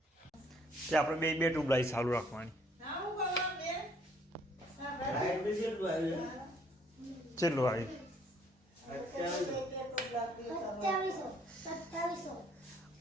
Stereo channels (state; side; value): normal; both; correlation 0.63